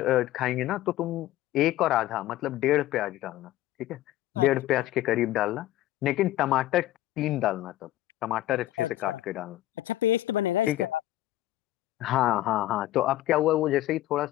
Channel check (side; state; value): right; quieter; 14.8 dB